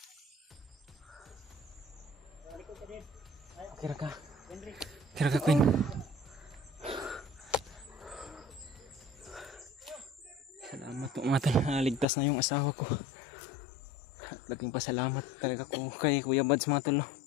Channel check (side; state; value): right; drops out; at 12.1 s